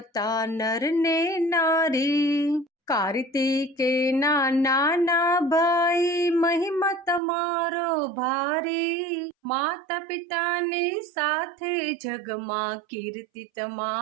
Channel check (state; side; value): drops out; left; at 7.2 s